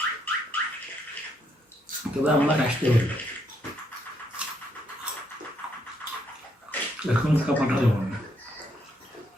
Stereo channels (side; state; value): both; normal; correlation 0.74